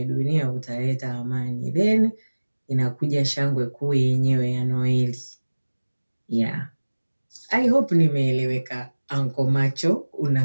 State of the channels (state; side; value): inverted; both; correlation -1.00